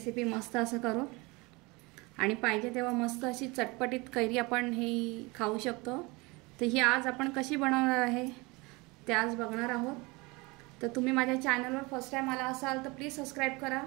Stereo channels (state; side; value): quieter; left; 25.3 dB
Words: मस्त असं करू आणि पाहिजे तेव्हा मस्त अशी चटपटीत कैरी आपण ही खाऊ शकतो। तर ही आज आपण कशी बनवणार आहे ते आज बघणार आहोत। तर तुम्ही माझ्या चॅनलवर फर्स्ट टाइम आला असाल तर प्लीज सबस्क्राइब करा,